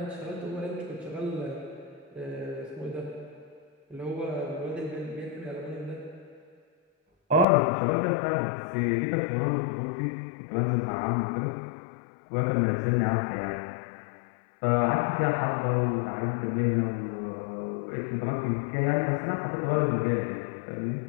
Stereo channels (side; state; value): right; drops out; at 7.5 s